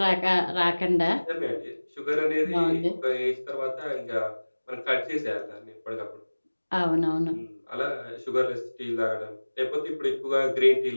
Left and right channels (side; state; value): both; inverted; correlation -1.00